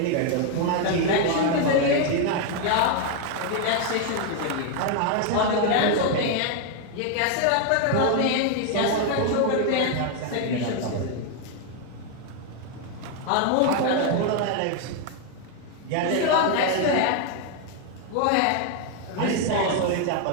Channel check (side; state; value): both; different; correlation 0.00